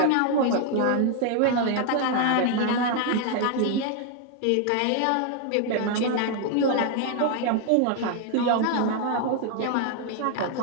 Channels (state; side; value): different; both; correlation 0.00